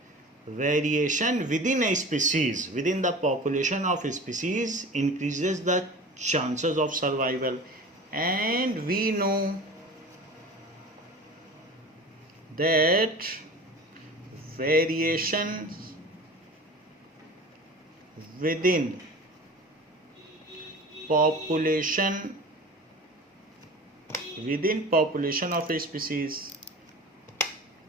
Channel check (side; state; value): both; normal; correlation 0.37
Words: variation within a species, within the population of a species, increases the chances of survival. And we know that variations within population of a species,